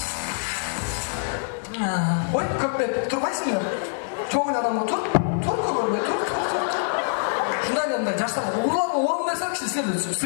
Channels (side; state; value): right; silent; digital silence